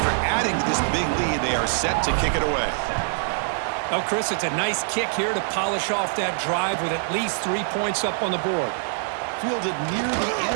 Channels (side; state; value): left; silent; 62 dB below the other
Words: adding to this big lead, they are set to kick it away. Well, Chris, it's a nice kick here to polish off that drive with at least 3 points up on the board. Fielded near the